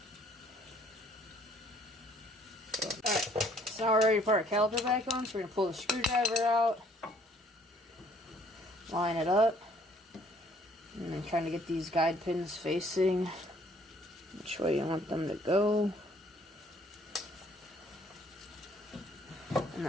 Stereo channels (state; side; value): normal; both; correlation 0.61